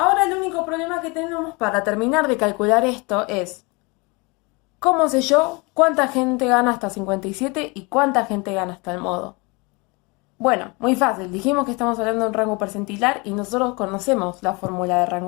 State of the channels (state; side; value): quieter; right; 27.9 dB